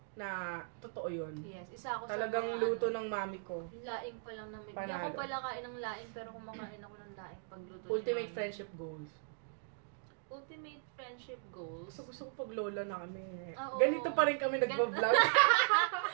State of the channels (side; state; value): left; silent; digital silence